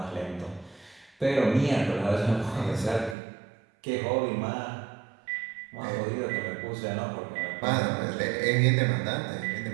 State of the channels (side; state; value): left; drops out; at 3.2 s